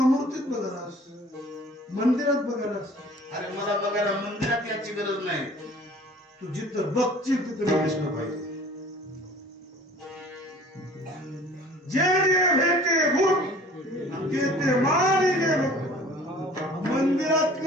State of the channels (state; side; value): normal; both; correlation 0.48